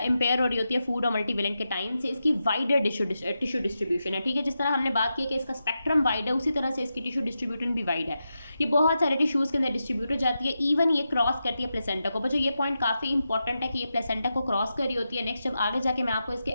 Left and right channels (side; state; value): both; inverted; correlation -0.89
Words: इम्पेयर हो रही होती है फूड और मल्टीवेलेंट के टाइम से। इसकी वाइडर टिश्यू डिस्ट्रीब्यूशन है, ठीक है। जिस तरह हमने बात की कि इसका स्पेक्ट्रम वाइड है, उसी तरह से इसकी टिश्यू डिस्ट्रीब्यूशन भी वाइड है। ये बहुत सारे टिश्यूज़ के अंदर डिस्ट्रीब्यूट हो जाती है, इवन ये क्रॉस करती है प्लेसेंटा को। बच्चों ये पॉइंट काफ़ी इंपॉर्टेंट है कि ये प्लेसेंटा को क्रॉस कर रही होती है। नेक्स्ट जब आगे जाके मैं आपको इसके